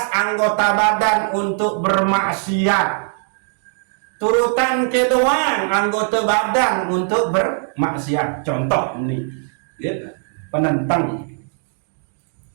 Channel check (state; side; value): silent; left; 56 dB below the other